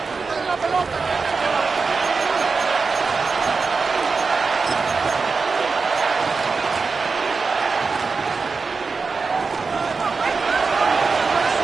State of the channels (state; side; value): quieter; left; 4.6 dB